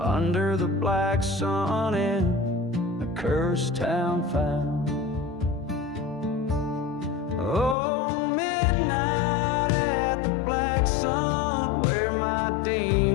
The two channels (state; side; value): drops out; right; at 7.8 s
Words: the black sun in cursed town found. Oh, midnight at the black sun, where my